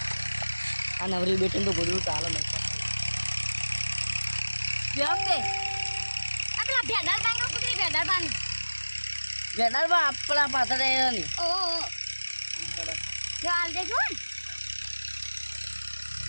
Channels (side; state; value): both; inverted; correlation -1.00